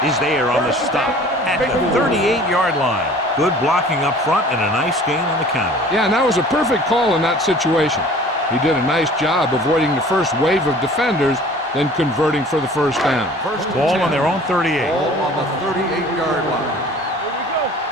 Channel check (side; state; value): both; normal; correlation 0.48